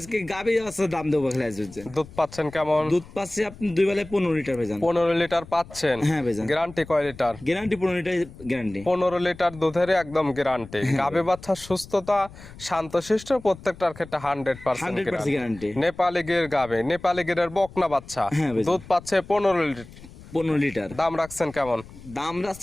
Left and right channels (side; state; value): left; noise; rumble, 18 dB below the sound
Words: গাভী আছে, দাম দেবো খালি আজ হচ্ছে। দুধ পাচ্ছেন কেমন? দুধ পাচ্ছি আপনি 2 বেলায় 15 লিটার ভাইজান। 15 লিটার পাচ্ছেন। হ্যাঁ ভাইজান। গ্যারান্টি কয় litre? Guarantee 15 litre guarantee. 15 litre দুধের একদম গ্যারান্টি। গাভী বাচ্চার সুস্থতা, শান্তশিষ্ট, প্রত্যেকটার ক্ষেত্রে 100% 100% গ্যারান্টি। নেপালি গির গাভী, নেপালি গিরের বকনা বাচ্চা, হ্যাঁ ভাইজান। দুধ পাচ্ছে 15 লিটার। 15 লিটার। দাম রাখছেন কেমন? দাম